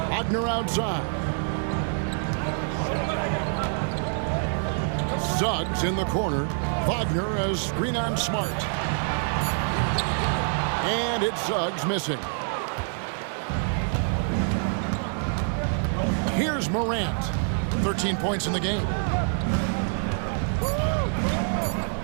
Wagner outside. Suggs in the corner. Wagner has screen on Smart. And it's Suggs missing. Here's Morant. 13 points in the game.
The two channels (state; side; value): silent; left; 61 dB below the other